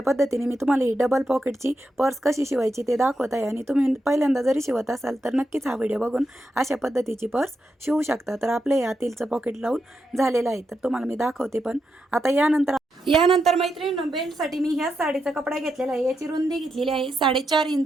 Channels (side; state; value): both; normal; correlation 0.85